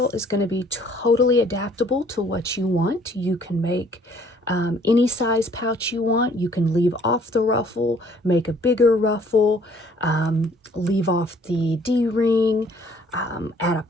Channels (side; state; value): both; normal; correlation 0.59